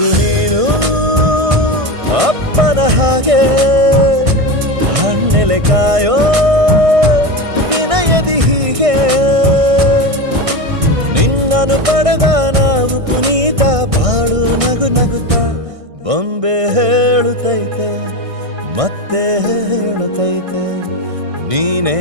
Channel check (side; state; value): left; late; 1.6 ms